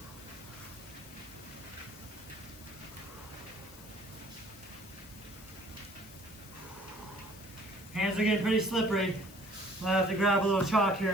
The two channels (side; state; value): left; noise; hiss, 18 dB below the sound